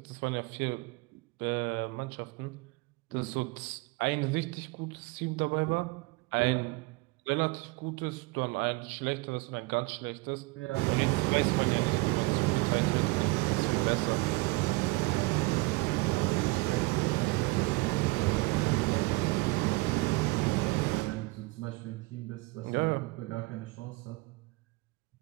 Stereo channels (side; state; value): left; quieter; 23.9 dB